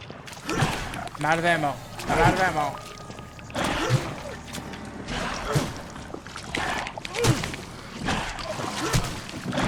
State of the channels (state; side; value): identical; both; correlation 1.00